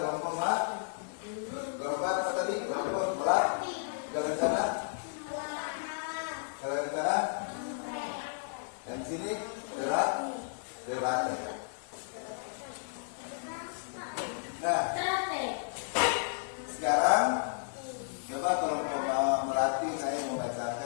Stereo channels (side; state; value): right; silent; digital silence